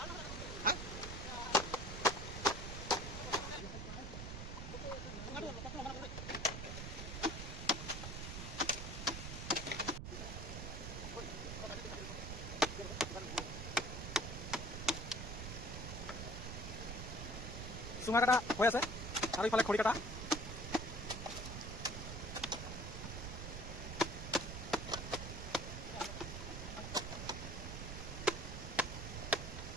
চুঙা কাটা হৈ আছে আৰু ইফালে খৰি কাটা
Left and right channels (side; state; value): right; noise; rumble, 6 dB below the sound